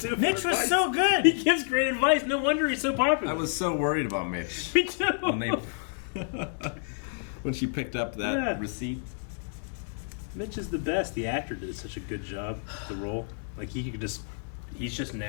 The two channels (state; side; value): silent; right; 59 dB below the other